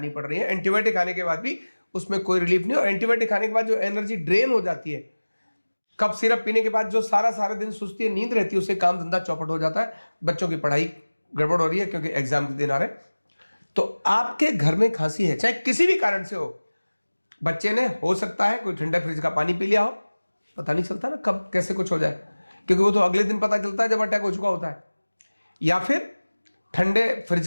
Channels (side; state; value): both; inverted; correlation -1.00